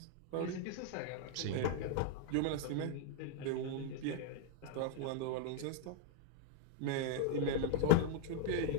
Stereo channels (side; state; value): both; different; correlation 0.00